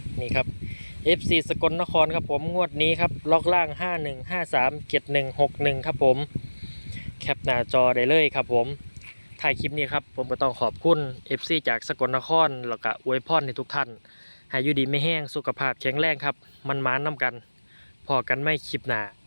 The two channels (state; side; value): inverted; both; correlation -1.00